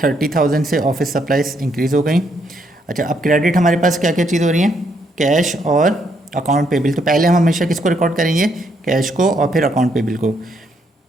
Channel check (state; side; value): normal; both; correlation 0.74